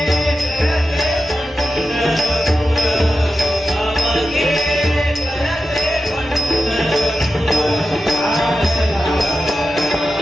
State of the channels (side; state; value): both; normal; correlation 0.91